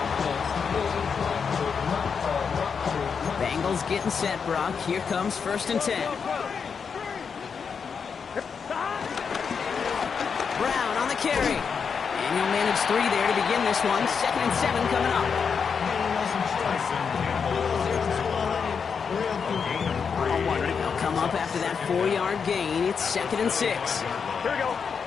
Bengals getting set, Brock. Here comes 1st and 10. Brown on the carry. And he'll manage 3 there to begin this one. 2nd and 7 coming up. They'll come up after that 4-yard gain. It's 2nd and 6. Here we go.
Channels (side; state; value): right; quieter; 6.1 dB